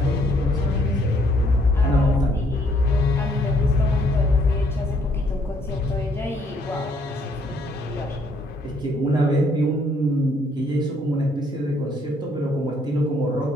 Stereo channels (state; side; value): normal; both; correlation 0.67